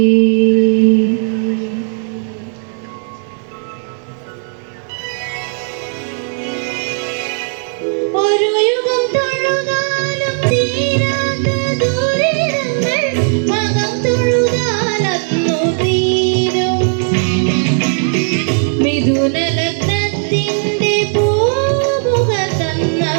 ഒരു യുഗം തൊഴുതാലും തീരാത്ത ദുരിതങ്ങൾ മകം തൊഴുതാലന്നു തീരും. മിഥുനലഗ്നത്തിന്റെ പൂമുഖ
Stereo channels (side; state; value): left; silent; 69 dB below the other